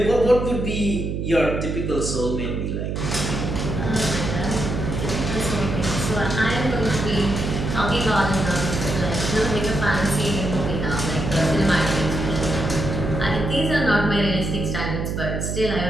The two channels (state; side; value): noise; right; hum, 2 dB below the sound